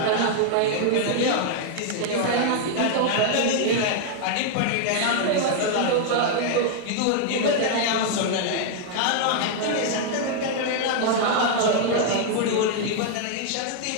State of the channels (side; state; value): both; different; correlation 0.00